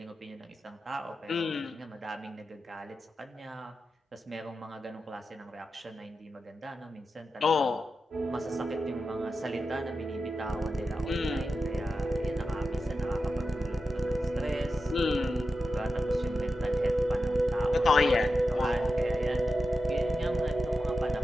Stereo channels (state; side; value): normal; both; correlation 0.91